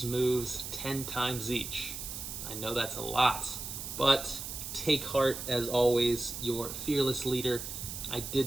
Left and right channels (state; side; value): noise; right; hiss, 7 dB below the sound